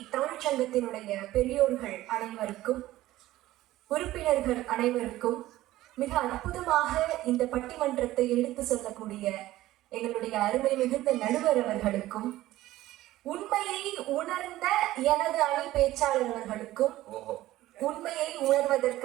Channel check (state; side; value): quieter; left; 15.7 dB